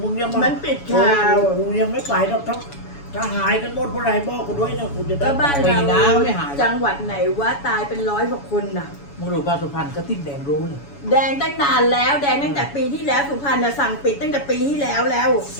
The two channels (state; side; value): late; right; 7.1 ms